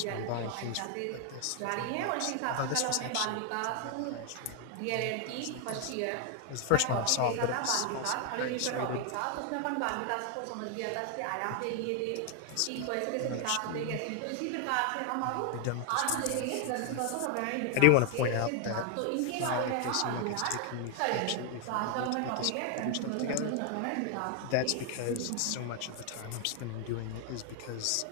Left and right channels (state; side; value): different; both; correlation 0.00